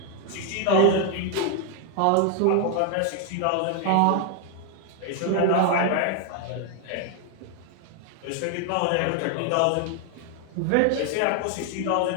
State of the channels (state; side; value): different; both; correlation 0.00